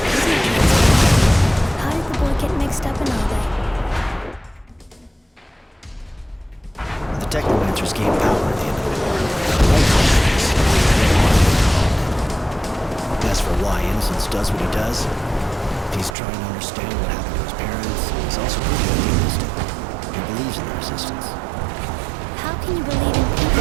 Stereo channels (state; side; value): drops out; left; at 16.2 s